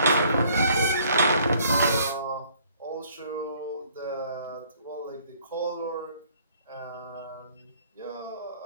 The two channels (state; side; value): inverted; both; correlation -0.61